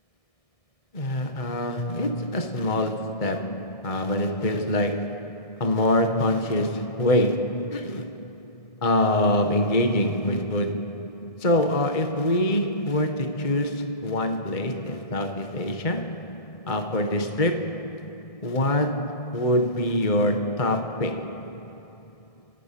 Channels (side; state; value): right; late; 1.6 ms